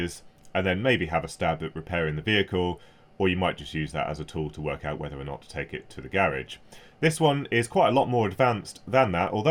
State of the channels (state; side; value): identical; both; correlation 1.00